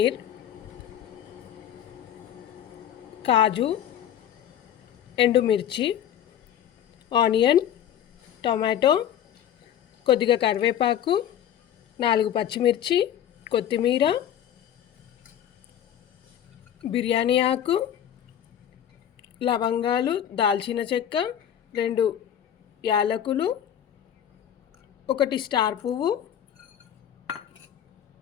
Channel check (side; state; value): right; quieter; 10.2 dB